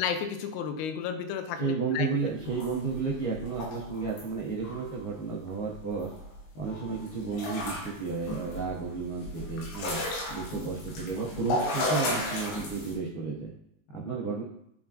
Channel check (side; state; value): right; late; 19 ms